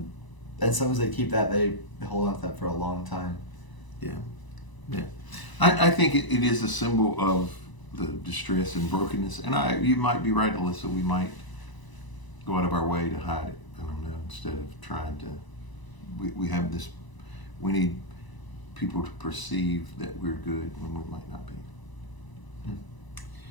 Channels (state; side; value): late; right; 1.0 ms